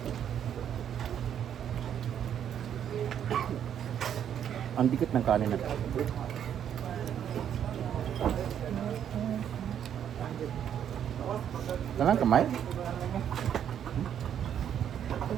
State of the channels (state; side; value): quieter; left; 9.3 dB